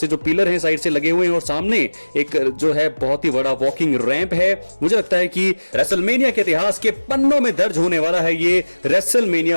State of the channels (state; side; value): inverted; both; correlation -1.00